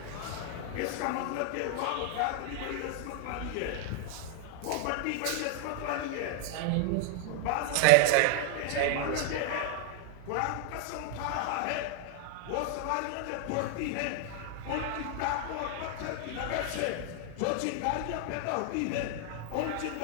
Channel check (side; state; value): both; different; correlation 0.00